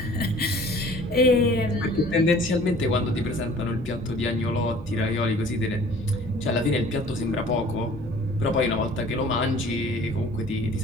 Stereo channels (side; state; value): both; normal; correlation 0.50